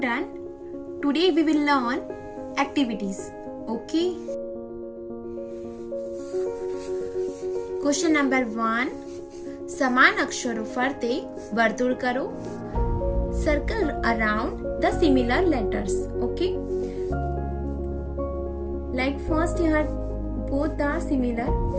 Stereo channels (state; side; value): identical; both; correlation 1.00